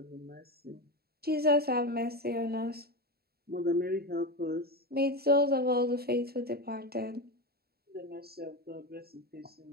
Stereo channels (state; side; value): late; left; 0.45 ms